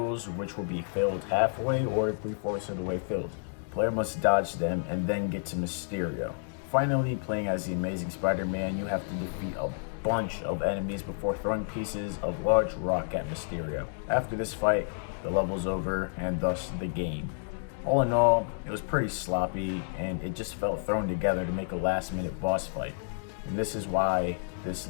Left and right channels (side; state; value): right; silent; digital silence